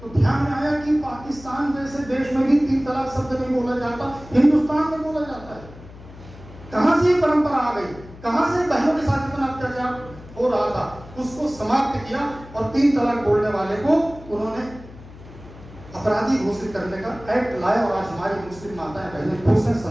तो ध्यान में आया कि पाकिस्तान जैसे देश में भी 3 तलाक शब्द नहीं बोला जाता, हिंदुस्तान में बोला जाता है। कहां से ये परंपरा आ गई, कहां से बहनों के साथ इतना अत्याचार हो रहा था, उसको समाप्त किया और 3 तलाक बोलने वाले को उन्होंने अपराधी घोषित करने का एक्ट लाया। और आज हमारी मुस्लिम माताएं बहनें खुश हैं,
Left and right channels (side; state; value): left; noise; hum, 18 dB below the sound